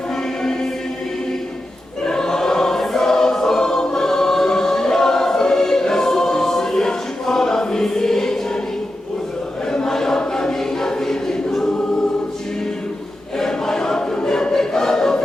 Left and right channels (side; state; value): both; normal; correlation 0.90